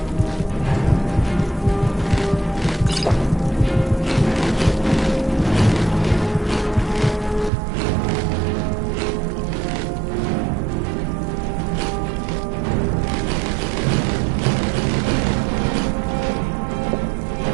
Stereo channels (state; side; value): drops out; left; at 7.5 s